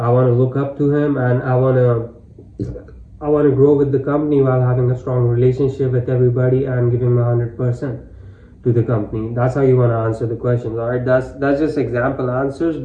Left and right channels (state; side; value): identical; both; correlation 1.00